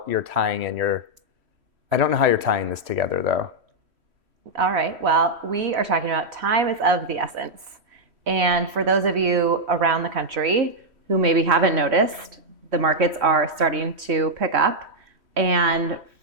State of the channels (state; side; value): late; left; 3.1 ms